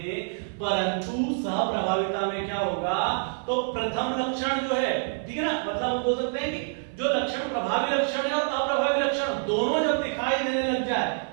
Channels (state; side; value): silent; left; 58 dB below the other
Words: परंतु सहप्रभाविता में क्या होगा, तो प्रथम लक्षण जो है, ठीक है ना, मतलब हम बोल सकते हैं कि जो लक्षण प्रभावी लक्षण है और अप्रभावी लक्षण दोनों जब दिखाई देने लग जाए,